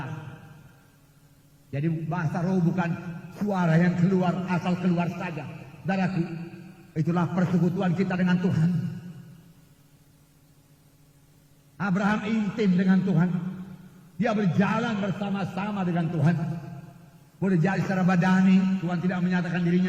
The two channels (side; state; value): both; identical; correlation 1.00